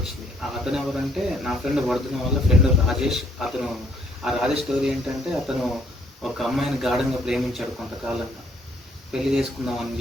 అతను ఎవరంటే నా ఫ్రెండ్ వర్ధన్ వాళ్ళ ఫ్రెండ్ రాజేష్. ఆ రాజేష్ స్టోరీ ఏంటంటే, అతను ఒక అమ్మాయిని గాఢంగా ప్రేమించాడు కొంతకాలంగా. పెళ్లి చేసుకుందామని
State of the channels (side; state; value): both; normal; correlation 0.66